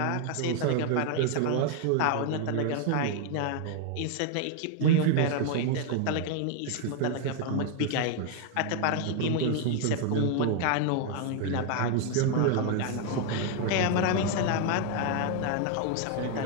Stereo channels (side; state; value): both; different; correlation 0.00